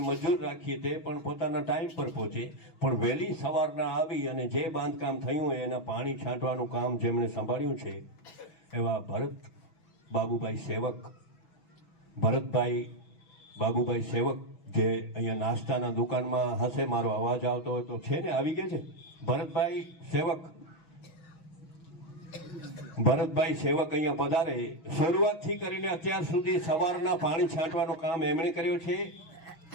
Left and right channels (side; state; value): right; late; 6.2 ms